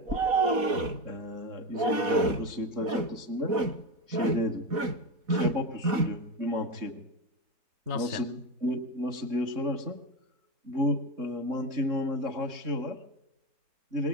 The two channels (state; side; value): late; left; 4.1 ms